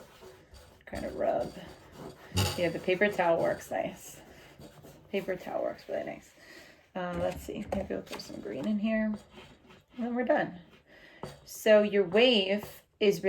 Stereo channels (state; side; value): identical; both; correlation 1.00